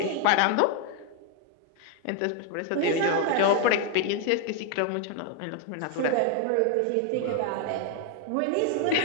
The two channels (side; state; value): both; different; correlation 0.00